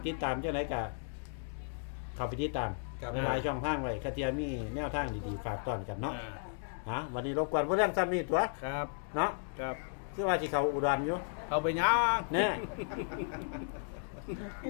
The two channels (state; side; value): silent; right; digital silence